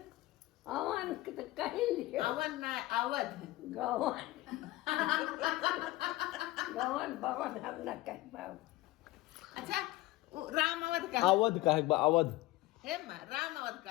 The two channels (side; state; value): right; quieter; 18.2 dB